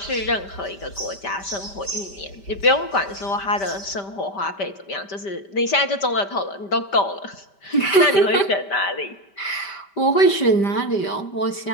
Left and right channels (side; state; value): right; late; 5.1 ms